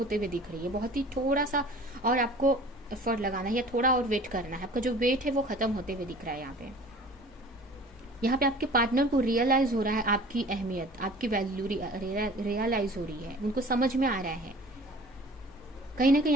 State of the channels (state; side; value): normal; both; correlation 0.45